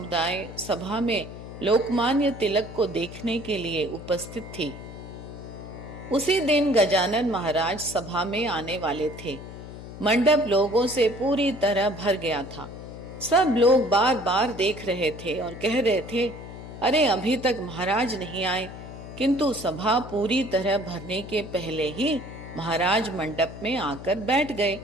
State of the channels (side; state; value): left; noise; hum, 13 dB below the sound